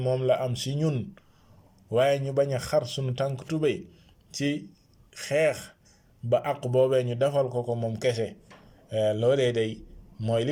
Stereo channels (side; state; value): both; identical; correlation 1.00